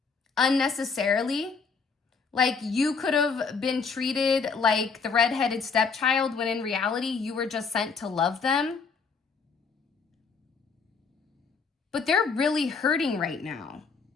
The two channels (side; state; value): right; quieter; 5.1 dB